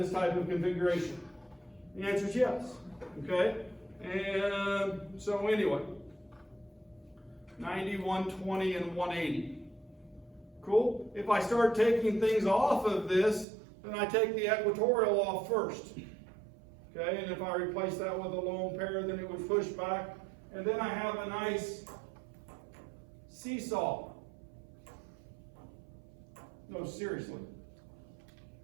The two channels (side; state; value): left; drops out; at 13.5 s